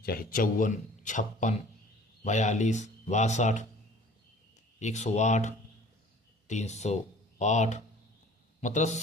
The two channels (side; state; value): both; normal; correlation 0.49